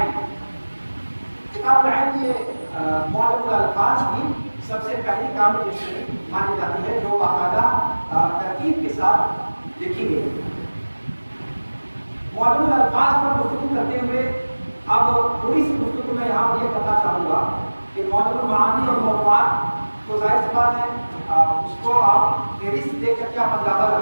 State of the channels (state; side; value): inverted; both; correlation -1.00